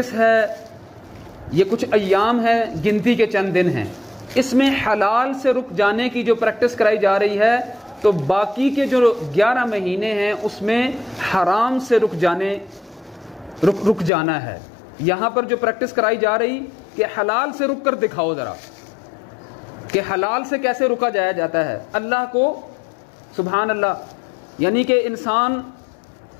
ہے، یہ کچھ ایام ہے، گنتی کے چند دن ہیں، اس میں حلال سے رک جانے کی جو پریکٹس کرائی جا رہی ہے، تو باقی کے جو 11 مہینے ہیں اس میں حرام سے رک جانا ہے۔ یہاں پر جو پریکٹس کرائی جا رہی کہ حلال سے رک کر دکھاؤ ذرا کہ حلال سے کیسے رکا جاتا ہے اللہ کو، سبحان اللہ، یعنی کہ انسان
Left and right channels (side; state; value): right; drops out; at 14.1 s